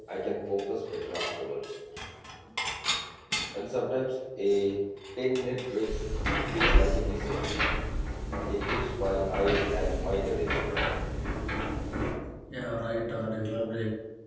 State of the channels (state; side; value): identical; both; correlation 1.00